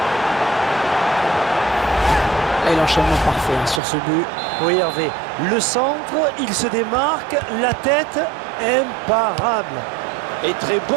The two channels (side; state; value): left; drops out; at 3.8 s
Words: Et l'enchaînement parfait sur ce but. Oui, Hervé, le centre, il se démarque, la tête, imparable. Et très